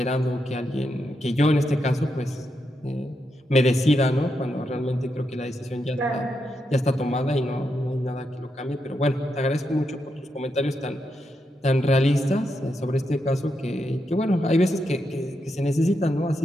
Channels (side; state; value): both; normal; correlation 0.83